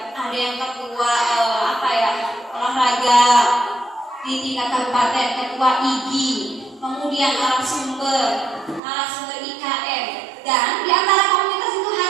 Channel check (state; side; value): drops out; left; at 8.8 s